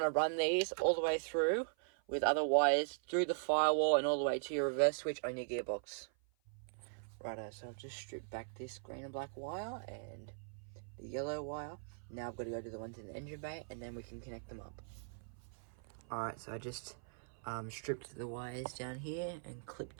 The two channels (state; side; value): silent; left; 51 dB below the other